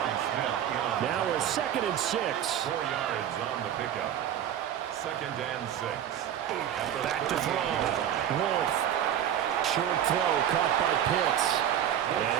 Now a 2nd and 6. 4 yards on the pickup. 2nd and 6. Back to throw. Wolf. Short throw caught by Pitts. And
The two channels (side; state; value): left; quieter; 10.3 dB